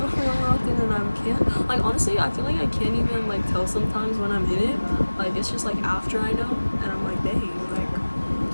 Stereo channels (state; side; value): inverted; both; correlation -1.00